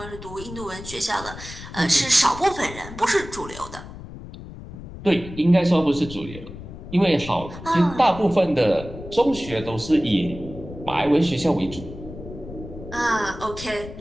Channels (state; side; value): noise; left; rumble, 13 dB below the sound